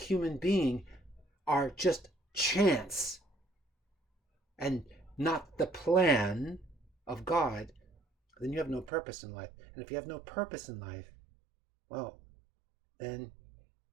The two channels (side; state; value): left; drops out; at 8.9 s